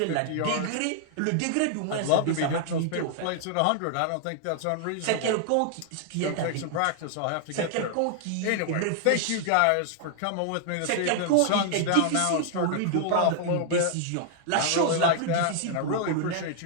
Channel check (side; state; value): both; different; correlation -0.01